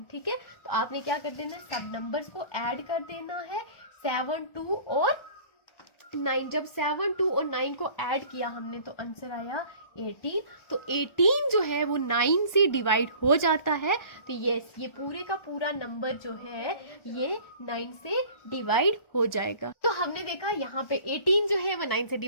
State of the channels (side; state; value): right; late; 1.4 ms